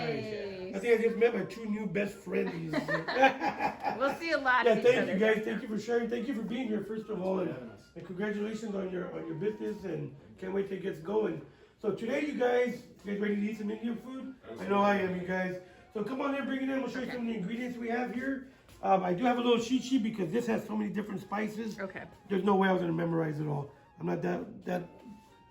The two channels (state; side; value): identical; both; correlation 1.00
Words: I think I just met my two new best friends. We'll see a lot Yeah, of each thank other. you guys. Thank you for sharing. Thank you for being here, first of all, for and, having us. and congratulations on your business. And can't wait till it gets going. So today, you guys ready to eat some Indian food? I know I am, you guys. So come on in, bring it in. We'll show you some of the ingredients we have here. I do have a little cheat sheet because this has so many different spices. Okay. There's no way I was gonna memorize it all. I'm not that